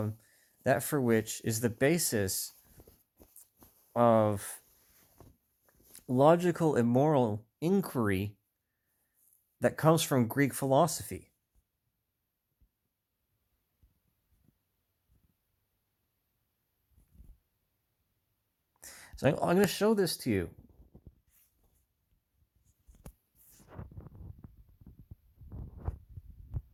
that for which is the basis of logical and moral inquiry that comes from Greek philosophy. So I'm going to show this to you.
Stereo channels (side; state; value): both; identical; correlation 1.00